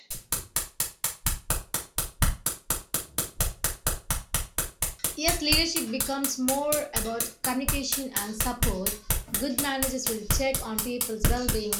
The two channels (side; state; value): both; identical; correlation 1.00